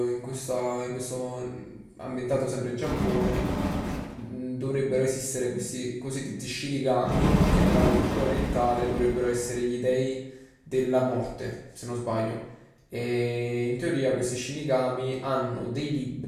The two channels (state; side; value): identical; both; correlation 1.00